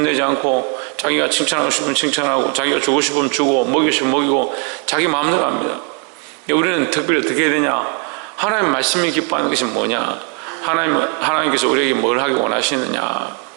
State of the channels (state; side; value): quieter; left; 38.4 dB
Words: 않고 자기가 칭찬하고 싶으면 칭찬하고 자기가 주고 싶으면 주고 먹이고 싶으면 먹이고 자기 마음대로 합니다. 우리는 특별히 어떻게 해야 되냐? 하나님 말씀이 기뻐하는 것이 뭐냐? 하나님께서 우리에게 뭘 하기 원하시느냐?